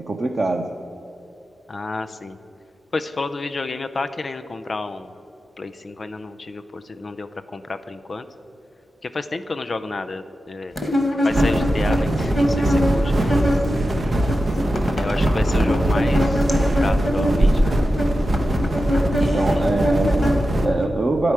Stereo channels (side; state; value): both; normal; correlation 0.92